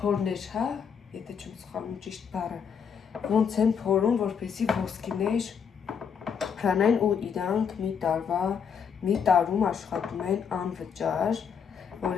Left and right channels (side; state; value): right; quieter; 6.9 dB